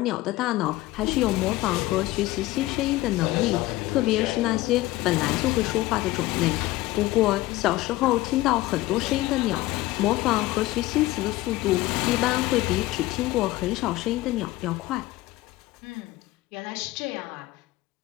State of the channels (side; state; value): right; quieter; 17.8 dB